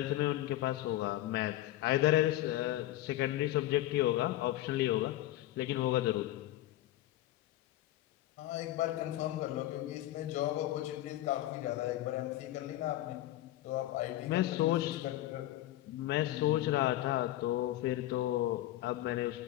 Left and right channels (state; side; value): quieter; right; 15.0 dB